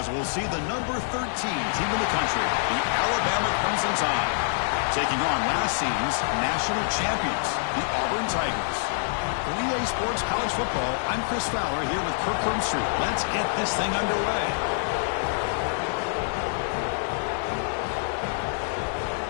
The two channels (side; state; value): right; silent; digital silence